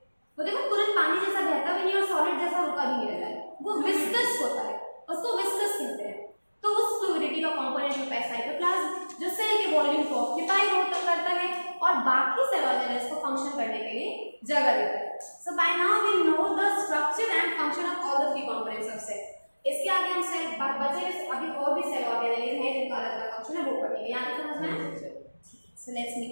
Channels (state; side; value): inverted; both; correlation -1.00